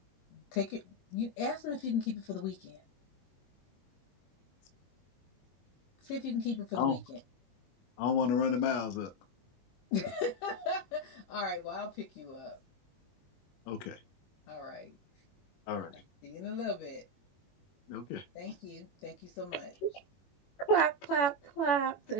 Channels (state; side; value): late; right; 21 ms